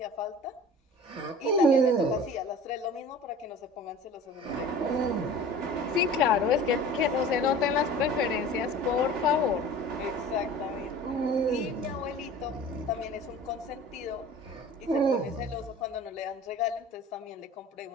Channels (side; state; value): both; normal; correlation 0.41